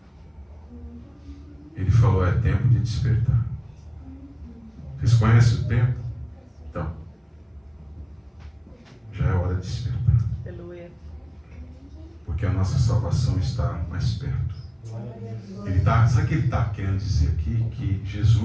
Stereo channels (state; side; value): identical; both; correlation 1.00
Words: Ele falou, é tempo de despertar. Vocês conhecem o tempo? Então, já é hora de despertar. Porque a nossa salvação está mais perto. Sabe o que ele está querendo dizer aqui? Que